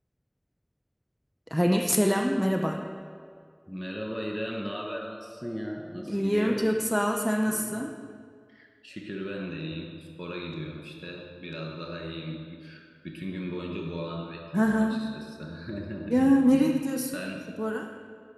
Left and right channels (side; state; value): both; identical; correlation 1.00